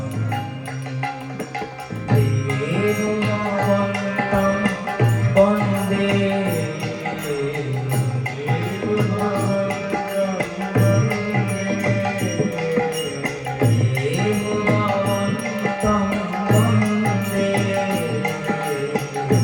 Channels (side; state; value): both; identical; correlation 1.00